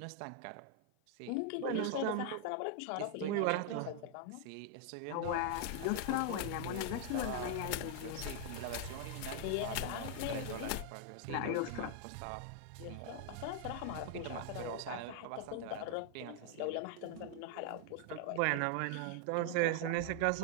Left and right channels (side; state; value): both; different; correlation 0.00